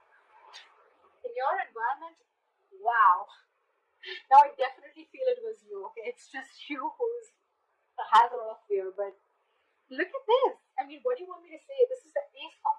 your environment, wow. Now I definitely feel it was you, okay? It's just you has a lot of fear, but look at this. I mean, what do you want me to say? This is the Ace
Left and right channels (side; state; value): both; identical; correlation 1.00